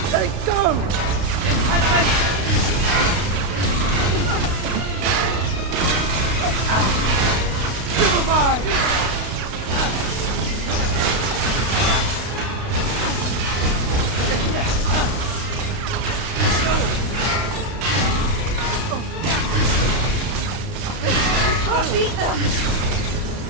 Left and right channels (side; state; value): left; late; 32 ms